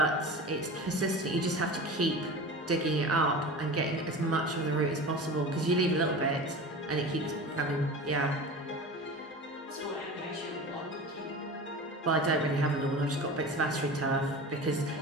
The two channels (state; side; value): normal; both; correlation 0.33